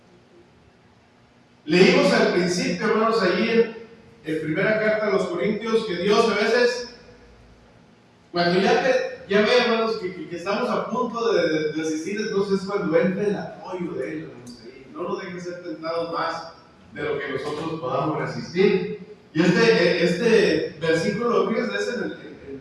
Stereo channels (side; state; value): both; identical; correlation 1.00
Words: Leímos al principio, hermanos, allí en primera carta a los Corintios, que Dios a veces, cuando ya ve, hermanos, que estamos a punto de asistir, entonces es cuando entra el apoyo de Él, hermanos, ahí. No nos dejen ser tentados más de lo que nosotros podamos resistir. Y este versículo, fíjense, es en